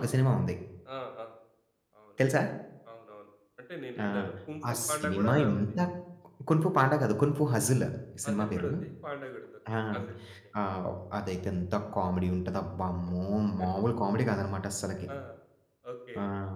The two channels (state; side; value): identical; both; correlation 1.00